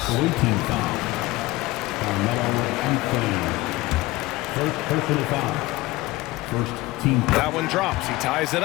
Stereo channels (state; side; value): quieter; right; 19.6 dB